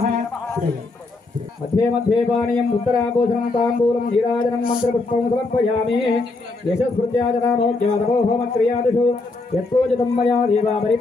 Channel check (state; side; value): quieter; right; 3.5 dB